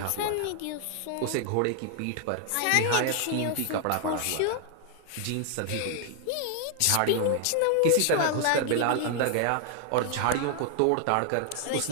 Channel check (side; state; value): both; different; correlation 0.00